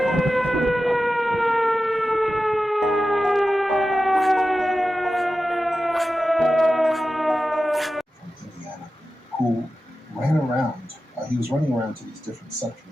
who ran around. He was running around to these different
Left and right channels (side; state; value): both; normal; correlation 0.93